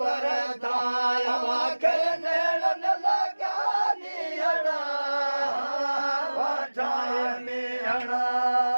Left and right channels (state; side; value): inverted; both; correlation -1.00